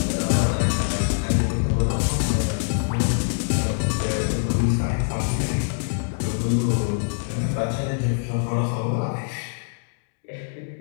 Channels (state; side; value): silent; right; digital silence